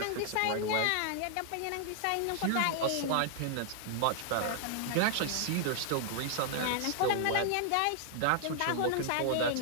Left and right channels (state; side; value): different; both; correlation -0.01